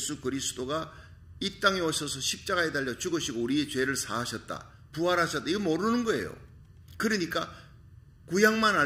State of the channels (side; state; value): both; identical; correlation 1.00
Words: 그리스도가 이 땅에 오셔서 십자가에 달려 죽으시고 우리의 죄를 사하셨다, 부활하셨다, 이거 모르는 거예요. 그러니까 구약만